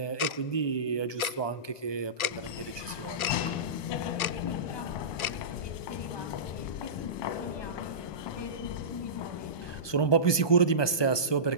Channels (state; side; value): late; right; 1.2 ms